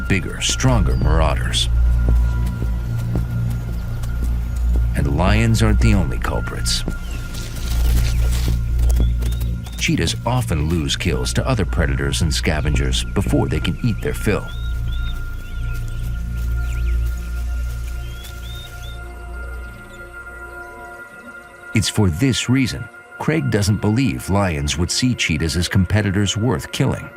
stronger marauders. And lions aren't the only culprits. Cheetahs often lose kills to other predators and scavengers before they can eat their fill. It's for this reason Craig doesn't believe lions would see cheetahs as competitors worth killing.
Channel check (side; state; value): both; identical; correlation 1.00